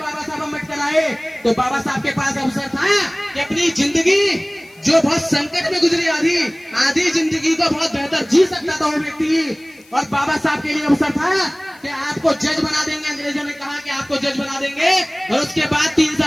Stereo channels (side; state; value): left; noise; hiss, 28 dB below the sound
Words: साहब अम्बेडकर आए, तो बाबा साहब के पास अवसर था कि अपनी जिंदगी जो बहुत संकट में गुजरी आधी जिंदगी को बहुत बेहतर जी सकता था वो व्यक्ति। और बाबा साहब के लिए अवसर था कि आपको जज बना देंगे। अंग्रेजों ने कहा कि आपको जज बना देंगे और उसके बाद 3